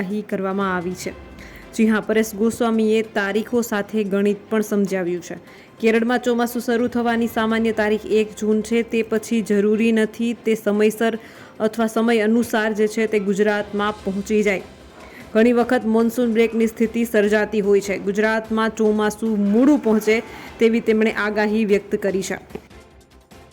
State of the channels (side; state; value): both; identical; correlation 1.00